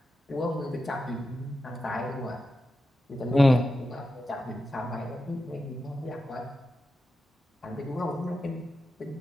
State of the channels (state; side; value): normal; both; correlation 0.90